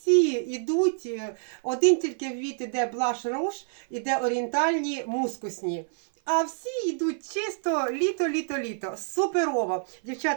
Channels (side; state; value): left; silent; 55 dB below the other